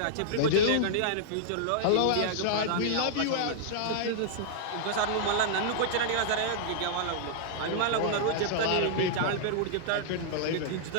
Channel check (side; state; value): both; different; correlation -0.01